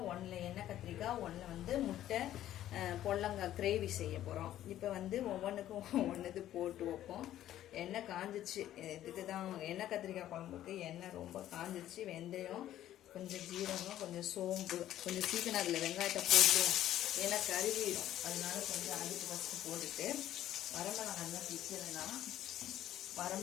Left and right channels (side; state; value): right; quieter; 12.6 dB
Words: ஒன்றில் எண்ணெய் கத்திரிக்காய், ஒன்றில் வந்து முட்டை பொல்லங்காய் கிரேவி செய்ய போகிறோம். இப்போ வந்து ஒவ்வொன்றுக்கும் ஒன்றுது போட்டு வைப்போம். எண்ணெய் காஞ்சிச்சு. இதுக்கு தான் எண்ணெய் கத்திரிக்காய் குழம்புக்கு எண்ணெய் ரொம்ப காஞ்சிச்சு. வெந்தயம், கொஞ்சம் ஜீரகம், கொஞ்சம் சோம்பு, கொஞ்சம் சீக்கிரம் அதில் வெங்காயத்தை போட்டுவோம். ஏன்னா கருவிடும். அதனால கொஞ்சம் அதுக்கு ஃபஸ்ட்டு போட்டுட்டு வரமிளகாய் தான் பிடிச்சதுன்னா